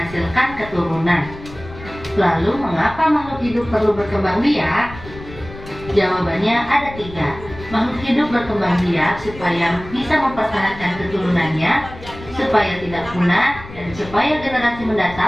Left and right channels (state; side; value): noise; left; rumble, 15 dB below the sound